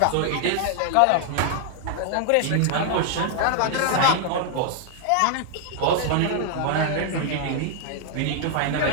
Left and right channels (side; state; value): both; different; correlation 0.00